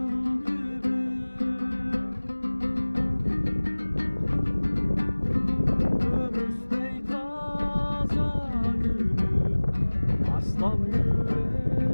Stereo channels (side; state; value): both; inverted; correlation -1.00